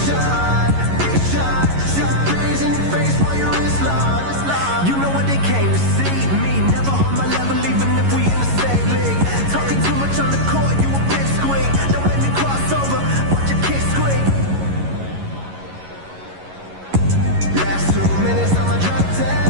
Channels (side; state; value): left; late; 11 ms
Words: shot, big shot, breeze in your face while your wrist locked. You know what they came to see? Me, never on my level, even if we in the same league. Talking too much on the court, you a bit squeak. Don't let me cross over, watch your kick squeak. Last 2 minutes on my drop